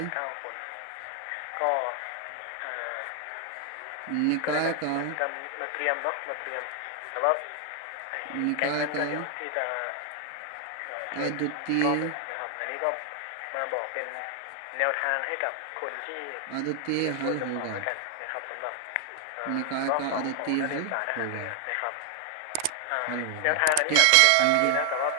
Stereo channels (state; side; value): different; both; correlation 0.00